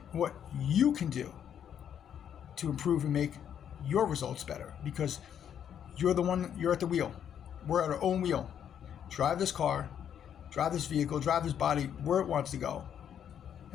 what you can do to improve and make your results better, because you're at the wheel. We're at our own wheel. Drive this car, drive this vehicle, drive this body where it wants to go,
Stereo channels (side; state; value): right; quieter; 9.0 dB